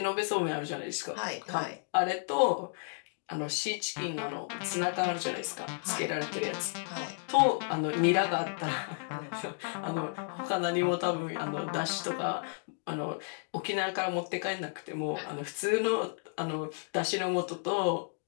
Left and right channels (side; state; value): right; silent; 56 dB below the other